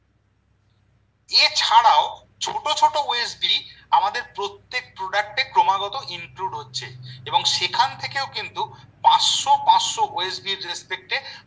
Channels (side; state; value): both; identical; correlation 1.00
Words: এছাড়াও ছোট ছোট ওএসবি আমাদের প্রত্যেক প্রোডাক্টে ক্রমাগত ইনক্লুড হচ্ছে, এবং সেখান থেকেও কিন্তু 500 ওএসবির রেসপেক্টে